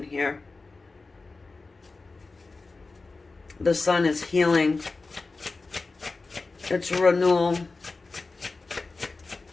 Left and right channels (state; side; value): quieter; right; 3.7 dB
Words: here. The sun is healing. It's renewal.